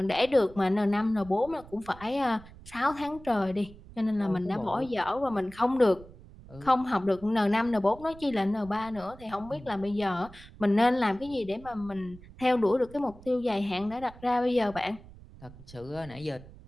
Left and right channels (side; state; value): right; noise; rumble, 19 dB below the sound